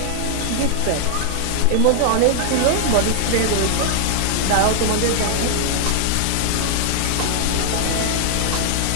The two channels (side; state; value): both; different; correlation -0.01